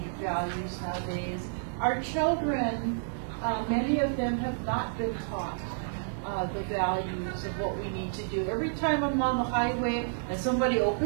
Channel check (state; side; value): silent; left; 58 dB below the other